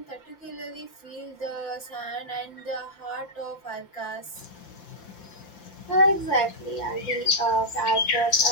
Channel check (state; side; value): late; right; 5.8 ms